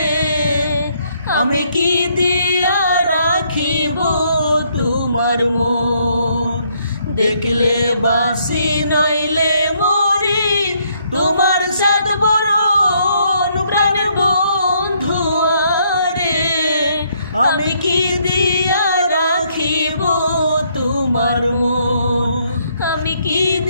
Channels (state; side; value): inverted; both; correlation -0.70